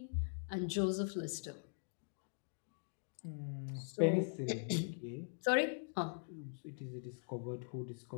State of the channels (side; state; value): right; silent; digital silence